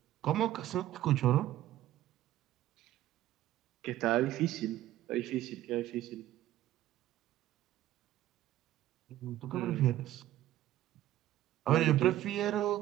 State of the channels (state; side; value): quieter; left; 13.9 dB